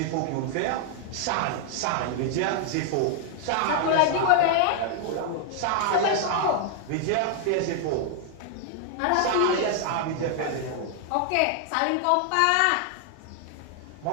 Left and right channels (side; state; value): both; different; correlation 0.00